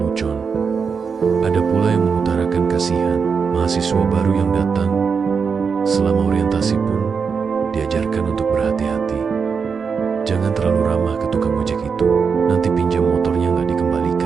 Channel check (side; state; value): left; quieter; 5.8 dB